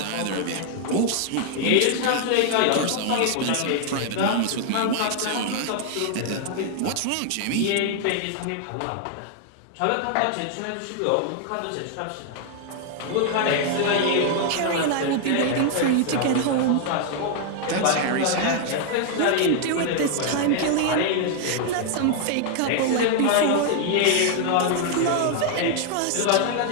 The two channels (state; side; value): different; both; correlation 0.00